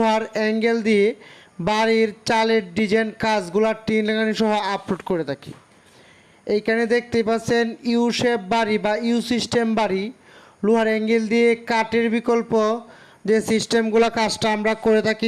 অ্যাঙ্গেল দিয়ে বাড়ির চালের ডিজাইন কাজগুলো টিন লাগানি সহ আপলোড করে থাকি। এইখানে দেখতেই পাচ্ছেন ইউ শেপ বাড়ি বা ইউ সিস্টেম বাড়ি, লোহার অ্যাঙ্গেল দিয়ে কাঠের বিকল্প যে সিস্টেমগুলো কাজটা আমরা করে থাকি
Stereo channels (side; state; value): both; identical; correlation 1.00